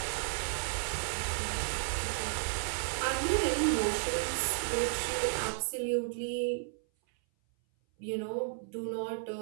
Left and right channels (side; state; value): left; silent; 56 dB below the other